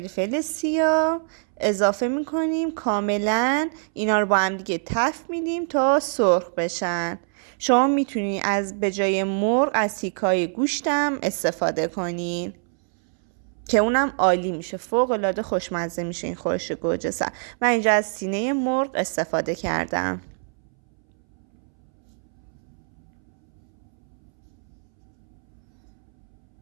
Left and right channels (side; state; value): left; silent; 62 dB below the other